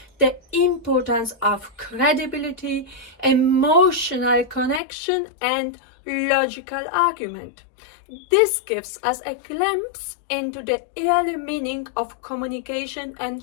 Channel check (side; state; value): right; drops out; at 4.8 s